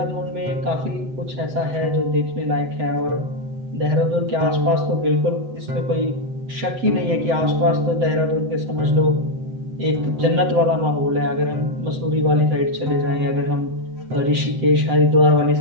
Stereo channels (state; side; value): late; left; 7.9 ms